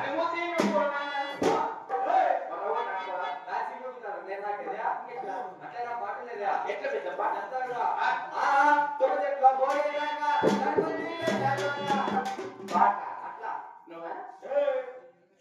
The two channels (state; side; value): identical; both; correlation 1.00